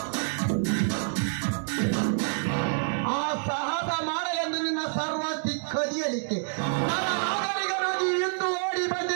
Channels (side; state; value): left; silent; digital silence